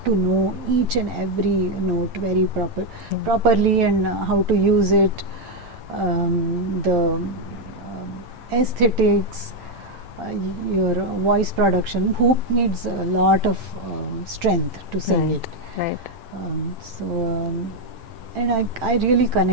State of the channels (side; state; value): left; late; 8.9 ms